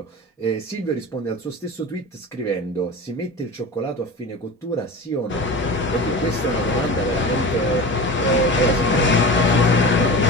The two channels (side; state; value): both; normal; correlation 0.32